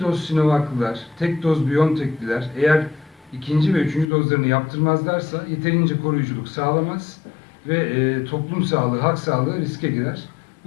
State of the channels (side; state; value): right; drops out; at 4.0 s